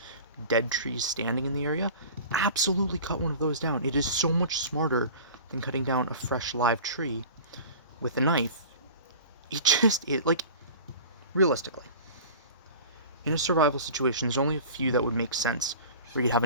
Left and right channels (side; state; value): both; inverted; correlation -0.39